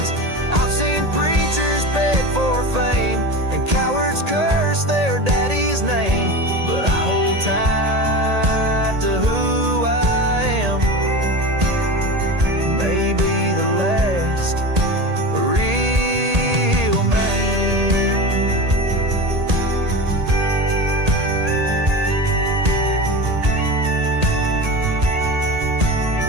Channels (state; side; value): late; left; 1.8 ms